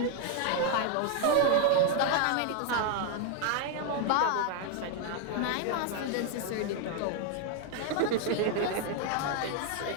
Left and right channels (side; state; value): both; different; correlation 0.01